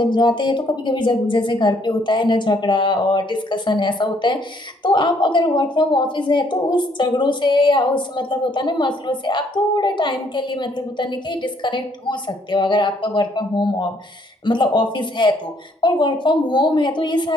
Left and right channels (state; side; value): normal; both; correlation 0.66